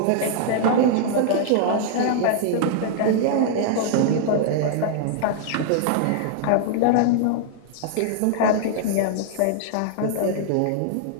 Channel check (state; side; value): different; both; correlation -0.01